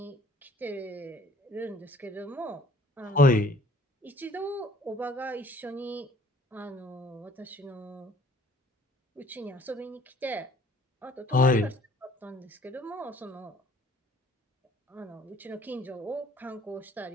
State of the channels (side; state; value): both; normal; correlation 0.56